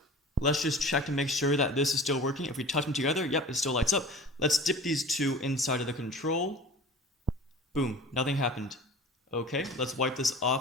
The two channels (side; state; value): both; normal; correlation 0.40